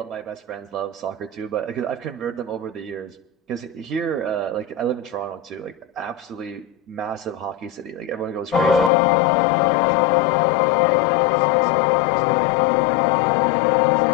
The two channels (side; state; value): right; drops out; at 8.9 s